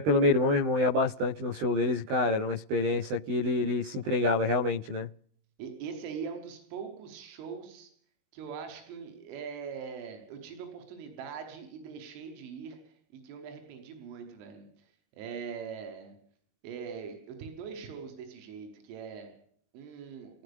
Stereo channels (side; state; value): left; late; 20 ms